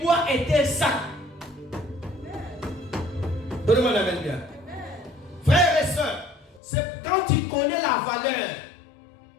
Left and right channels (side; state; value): right; drops out; at 6.6 s